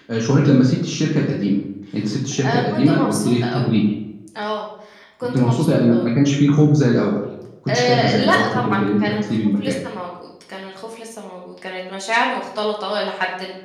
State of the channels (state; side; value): identical; both; correlation 1.00